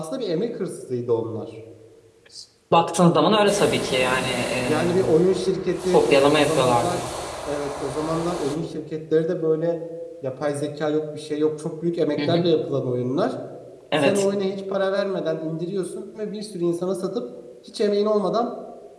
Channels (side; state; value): both; identical; correlation 1.00